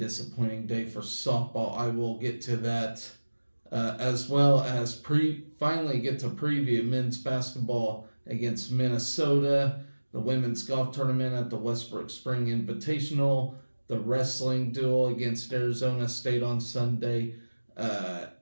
day for softball. I will get to that, as well as finally get to preview men's basketball against Minnesota, the women's golf tournament at the Westbrook Spring Invitational, the wrestling duel against Arizona State on Sunday.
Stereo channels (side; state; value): both; inverted; correlation -1.00